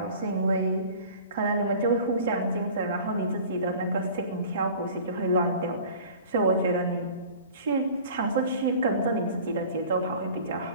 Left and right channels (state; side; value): inverted; both; correlation -0.44